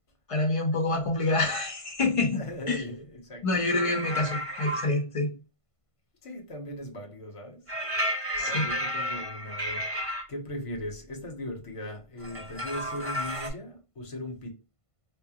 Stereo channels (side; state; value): right; late; 1.5 ms